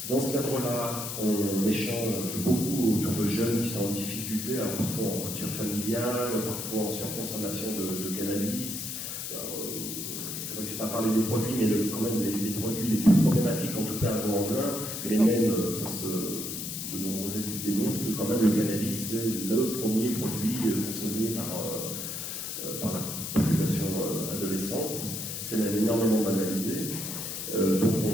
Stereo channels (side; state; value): left; noise; hiss, 5 dB below the sound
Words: Dans ce cadre-là, on échange beaucoup autour de jeunes qui sont en difficulté, alors parfois en rupture familiale, parfois en surconsommation de cannabis. C'est vrai que je n'ai pas parlé des produits, mais quand même les produits les plus problématiques, en tout cas à Vaux-en-Velin, mais même de nombreuses études démontrent que quand même le cannabis, c'est le premier produit consommé par la population adolescente. C'est même énormément banalisé. Donc